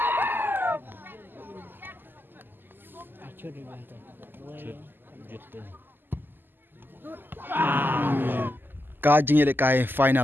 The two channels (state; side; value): late; left; 0.093 ms